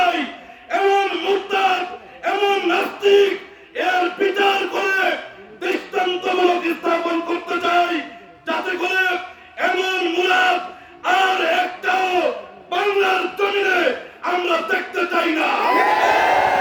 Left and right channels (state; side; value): identical; both; correlation 1.00